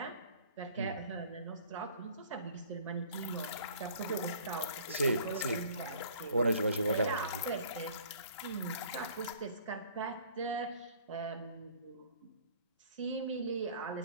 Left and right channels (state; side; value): inverted; both; correlation -0.51